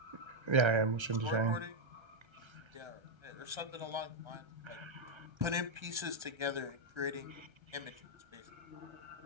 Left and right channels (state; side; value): late; left; 1.3 ms